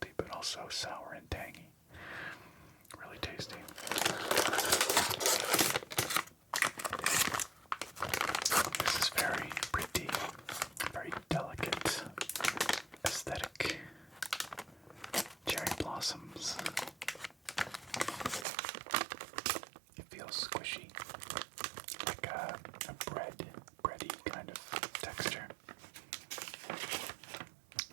but also sour and tangy. Really tasty. This is very pretty, very delicate, aesthetic. Cherry blossoms. It feels squishy, like a bready kind of texture.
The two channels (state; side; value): drops out; left; at 18.4 s